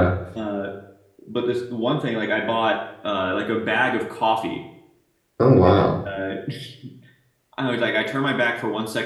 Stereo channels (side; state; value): both; identical; correlation 1.00